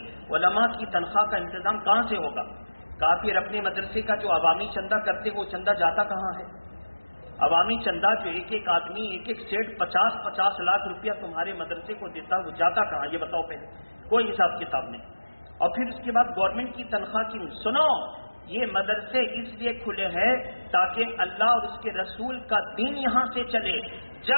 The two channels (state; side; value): inverted; both; correlation -1.00